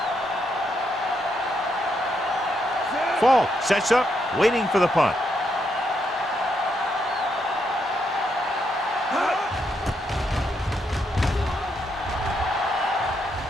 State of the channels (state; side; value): normal; both; correlation 0.78